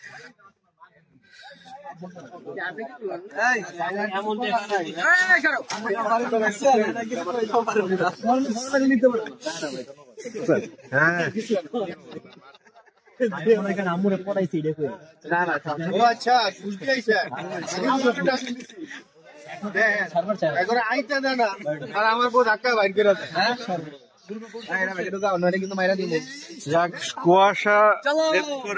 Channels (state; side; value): identical; both; correlation 1.00